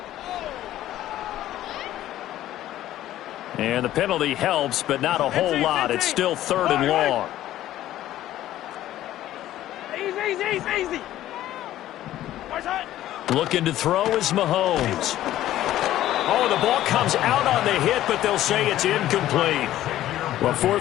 And the penalty helps, but not a whole lot. It's still 3rd and long. Easy. Looking to throw is Mahomes. Oh, the ball comes out on the hit, but they'll say it's incomplete. Well,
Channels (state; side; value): quieter; right; 13.5 dB